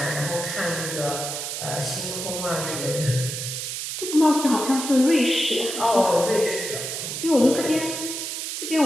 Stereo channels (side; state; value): right; noise; hiss, 5 dB below the sound